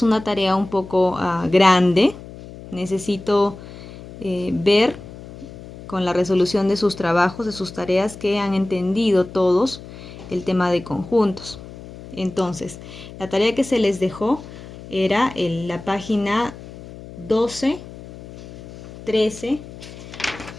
una tarea un poco grande. Necesito ver con la resolución de sus trabajos, de sus tareas, que han entendido todos el tema de conjuntos. Entonces, la tarea que se les dejó era en la página 12, 13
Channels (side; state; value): left; noise; hum, 15 dB below the sound